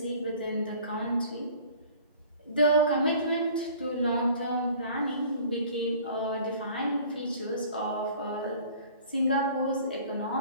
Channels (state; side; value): inverted; both; correlation -0.49